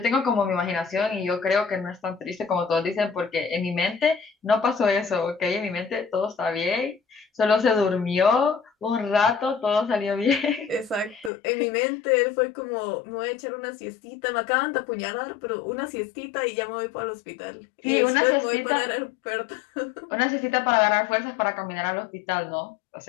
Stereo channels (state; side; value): drops out; right; at 11.3 s